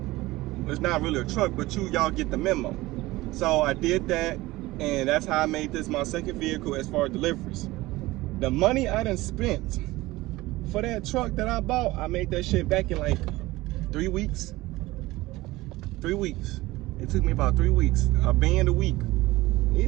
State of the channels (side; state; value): left; quieter; 19.1 dB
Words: it's not really a truck, but y'all get the memo. So I did that, and that's how I made this my second vehicle as far as deliveries. The money I done spent for that truck that I bought, I made that shit back in like 3 weeks. 3 weeks. It took me about 3 weeks, a band a week.